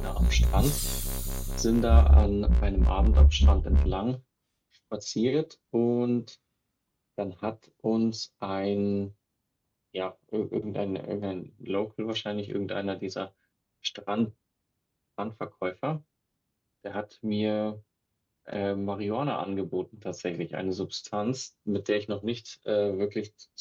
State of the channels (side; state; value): both; identical; correlation 1.00